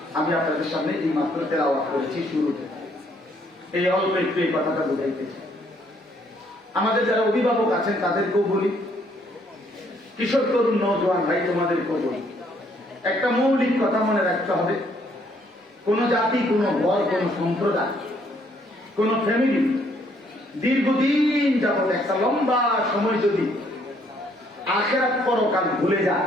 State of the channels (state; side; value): normal; both; correlation 0.67